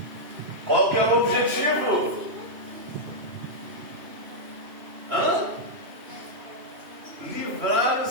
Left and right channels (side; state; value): left; late; 2.9 ms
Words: Qual que é o objetivo? Livrar